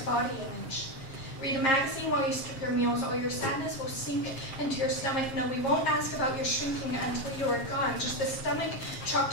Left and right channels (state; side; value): late; right; 7.5 ms